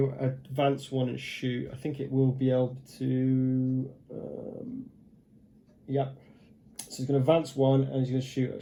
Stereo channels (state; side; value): identical; both; correlation 1.00